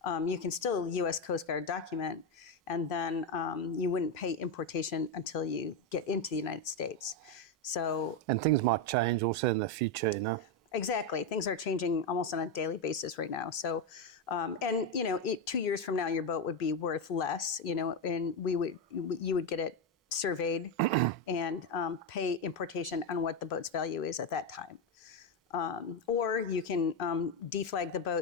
you can still U.S. Coast Guard document, and then you wouldn't pay importation until you get into the United States. So, and things might change also in the future, Exactly. Things are changing almost on a daily basis right now. So, 2 years from now, your boat would be worth less, and you would get it surveyed and pay importation on what the boat's value is at that time. Or you can deflag the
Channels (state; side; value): normal; both; correlation 0.08